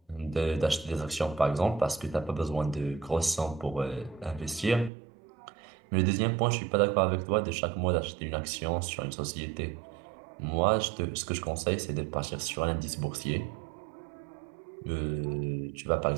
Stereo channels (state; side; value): drops out; left; at 4.9 s